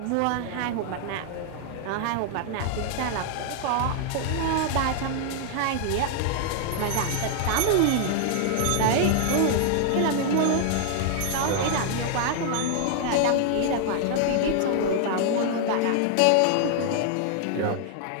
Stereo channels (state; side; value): different; both; correlation 0.00